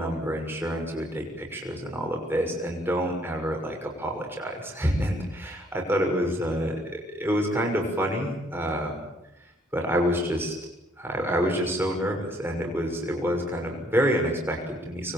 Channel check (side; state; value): both; normal; correlation 0.64